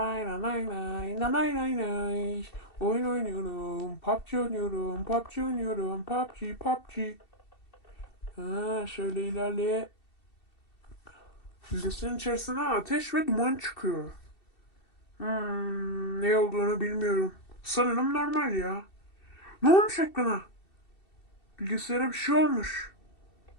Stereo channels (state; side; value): late; right; 2.7 ms